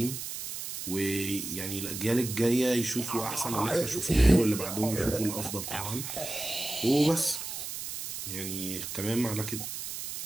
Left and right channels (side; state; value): right; noise; hiss, 7 dB below the sound